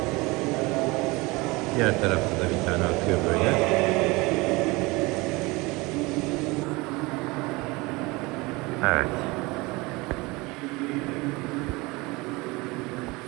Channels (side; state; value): left; quieter; 23.9 dB